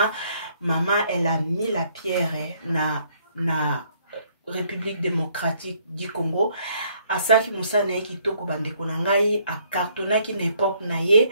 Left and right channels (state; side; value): inverted; both; correlation -0.66